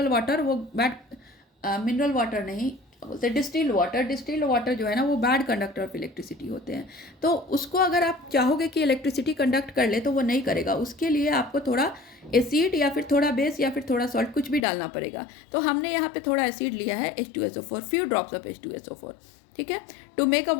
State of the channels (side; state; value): right; drops out; at 14.6 s